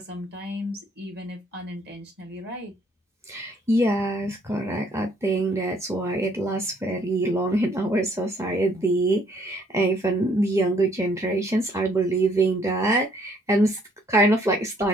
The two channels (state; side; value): normal; both; correlation 0.64